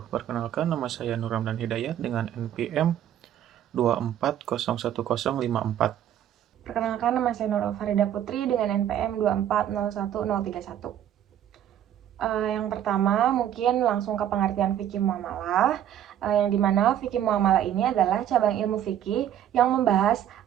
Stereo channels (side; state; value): left; quieter; 10.7 dB